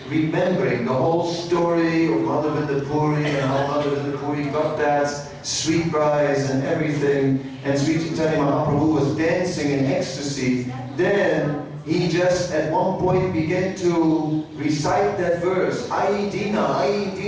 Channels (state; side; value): identical; both; correlation 1.00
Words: remembering the whole story of Madhavendra Puri and how Madhavendra Puri got that sweet prize and everything, and Sri Caitanya Mahaprabhu was dancing in ecstasy, then he just at one point began to recite that verse, Ai Dina, Ai